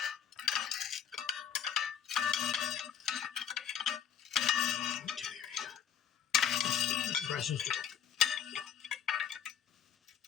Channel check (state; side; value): quieter; right; 8.6 dB